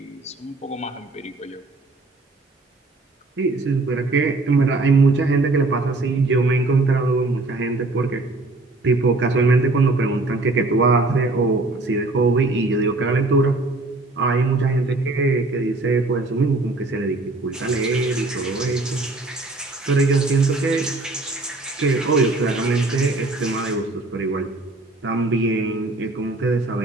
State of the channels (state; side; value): quieter; left; 3.1 dB